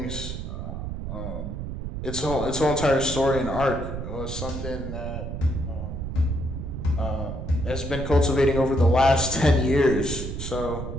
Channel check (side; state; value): right; noise; rumble, 6 dB below the sound